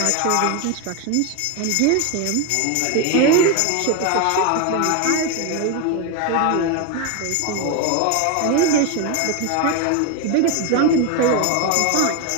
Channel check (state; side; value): different; both; correlation 0.02